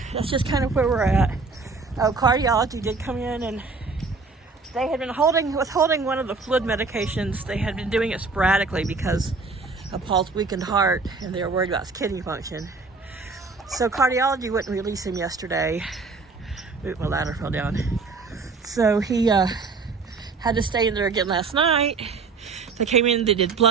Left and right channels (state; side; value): quieter; left; 4.3 dB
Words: that's just kind of where we're at. Cardiology did come in, and they had been holding one of the fluid medications. They had been doing it sporadically because of Paul's weakened heart, and they were worried about his kidney function. So cardiology wouldn't release him yesterday. Ooh, my ladder fell down. So he had to stay in there again last night. They came in, they did